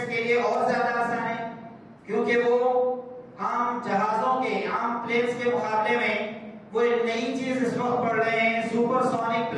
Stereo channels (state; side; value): identical; both; correlation 1.00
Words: کے لیے اور زیادہ آسان ہے، کیونکہ وہ عام جہازوں کے، عام پلینز کے مقابلے میں وہ ایک نئی چیز اس وقت پڑھ رہے ہیں، سپر سونک